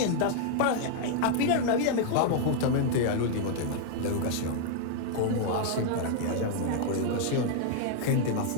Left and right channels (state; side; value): different; both; correlation 0.00